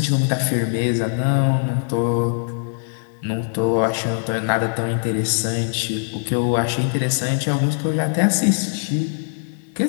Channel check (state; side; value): silent; right; digital silence